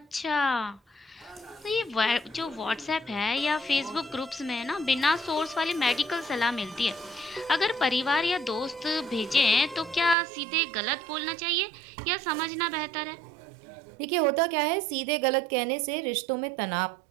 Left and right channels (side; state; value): left; drops out; at 10.2 s